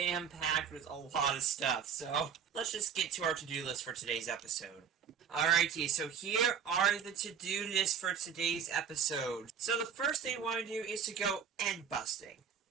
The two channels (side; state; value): left; quieter; 7.3 dB